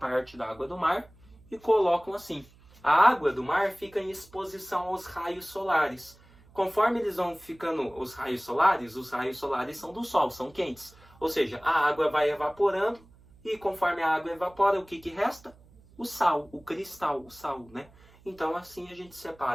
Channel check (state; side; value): noise; right; hum, 26 dB below the sound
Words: da água do mar e colocam assim. A água do mar fica em exposição aos raios solares. Conforme eles vão ficando os raios solares são do sol, são quentes. Ou seja, a água vai evaporando e conforme a água evapora, o que resta? O sal, o cristal, o sal, né? Então assim a gente